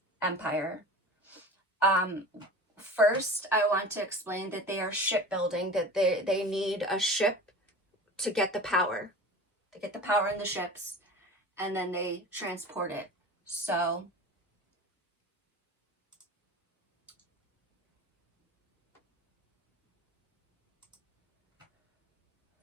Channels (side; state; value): both; normal; correlation 0.36